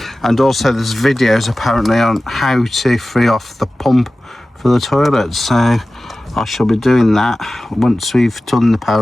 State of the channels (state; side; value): normal; both; correlation 0.96